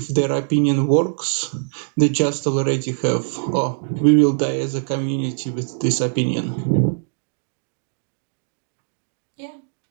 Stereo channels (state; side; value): silent; left; digital silence